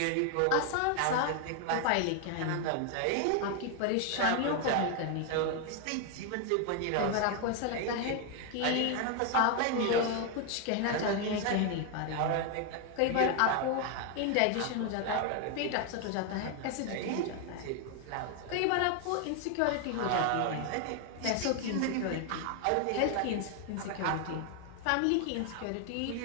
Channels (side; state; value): both; different; correlation 0.01